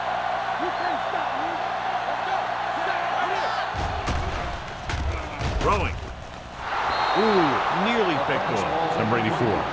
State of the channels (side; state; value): both; identical; correlation 1.00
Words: You can't stop me. Let's go. Right here. Throwing. Ooh, nearly picked off. Number 84